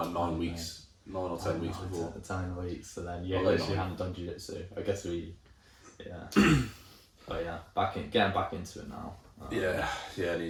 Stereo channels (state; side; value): identical; both; correlation 1.00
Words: like 9 weeks. 9 or 10 weeks before. 10 weeks, and then you literally hadn't done jiu-jitsu. I guess but yeah, getting back into it now. I